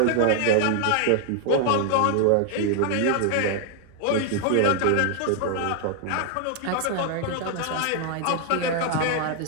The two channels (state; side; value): different; both; correlation 0.00